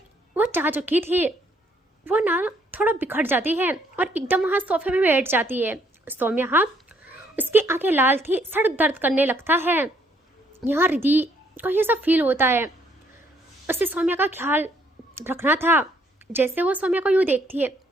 वो चाह चुकी थी, वो ना थोड़ा बिखर जाती है और एकदम वहाँ सोफे में बैठ जाती है सौम्या। हाँ उसकी आंखें लाल थी, सर दर्द करने लगता है। यहाँ रिधि को ये सब फील होता है, उससे सौम्या का ख्याल रखना था। जैसे वो सौम्या को यूँ देखती है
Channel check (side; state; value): both; normal; correlation 0.68